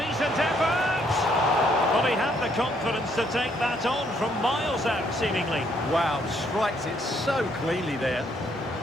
effort! But he had the confidence to take that on from miles out, seemingly. Wow, strikes it so cleanly there.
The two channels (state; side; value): normal; both; correlation 0.69